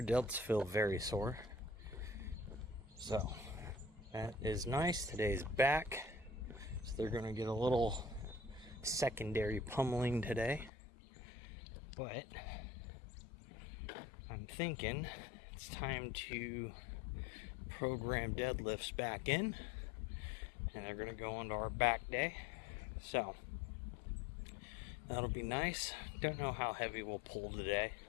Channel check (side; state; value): right; drops out; at 10.7 s